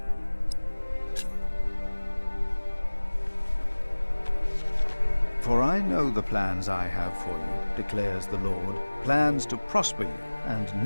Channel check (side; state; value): both; inverted; correlation -1.00